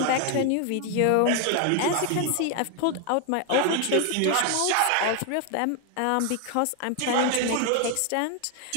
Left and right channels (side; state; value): both; different; correlation 0.01